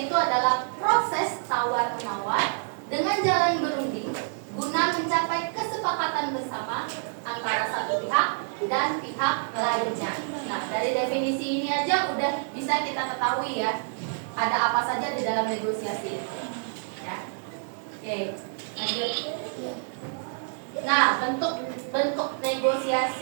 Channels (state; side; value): silent; left; digital silence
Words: itu adalah proses tawar-menawar dengan jalan berunding guna mencapai kesepakatan bersama antara satu pihak dan pihak lainnya. Nah, dari definisi ini aja udah bisa kita ketahui ya, ada apa saja di dalam negosiasi. Ya. Oke, lanjut. Nah, bentuk